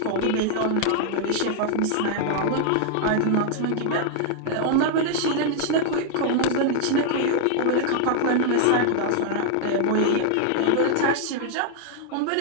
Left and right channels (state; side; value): different; both; correlation 0.00